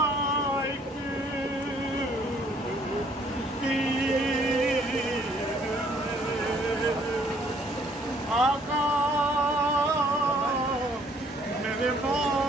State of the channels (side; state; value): both; normal; correlation 0.62